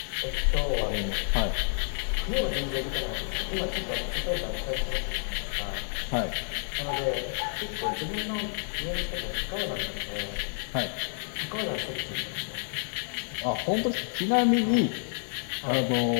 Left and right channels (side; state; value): right; silent; digital silence